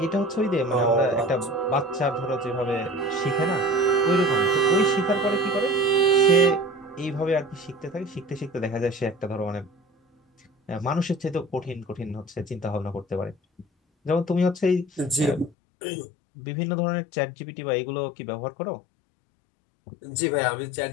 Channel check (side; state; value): right; drops out; at 15.5 s